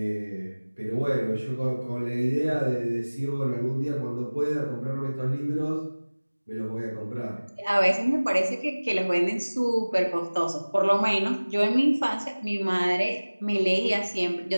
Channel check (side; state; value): both; inverted; correlation -1.00